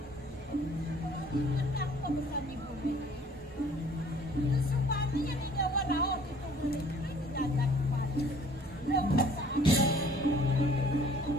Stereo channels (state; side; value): normal; both; correlation 0.55